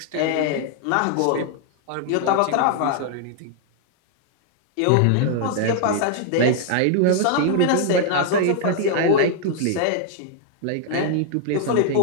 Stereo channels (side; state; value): both; different; correlation -0.01